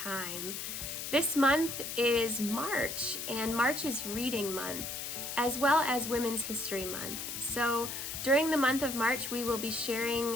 This month is March and March is Reading Month as well as Women's History Month. So during the month of March we will be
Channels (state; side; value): noise; left; hiss, 5 dB below the sound